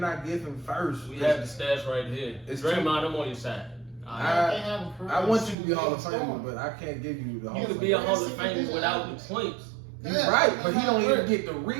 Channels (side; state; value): left; drops out; at 5.6 s